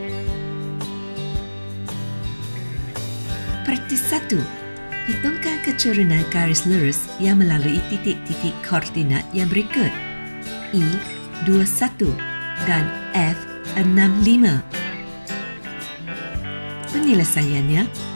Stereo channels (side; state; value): both; inverted; correlation -1.00